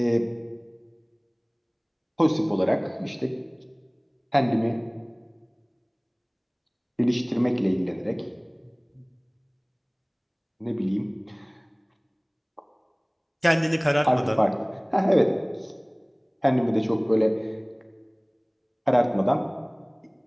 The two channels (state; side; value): identical; both; correlation 1.00